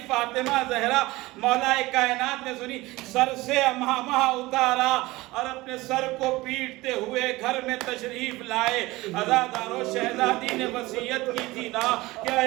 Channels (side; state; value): left; quieter; 20.1 dB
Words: فاطمہ زہرا مولا کائنات نے سنی، سر سے امامہ اتارا اور اپنے سر کو پیٹتے ہوئے گھر میں تشریف لائے۔ عزاداروں شہزادی نے وصیت کی تھی نا کہ